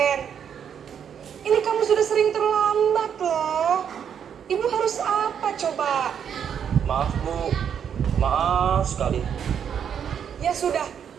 Ini kamu sudah sering terlambat loh. Ibu harus apa coba? Maaf, Bu. Maaf sekali. Ya sudah,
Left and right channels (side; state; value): left; quieter; 8.2 dB